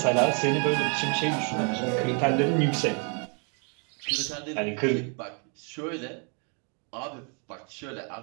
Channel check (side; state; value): left; quieter; 38.3 dB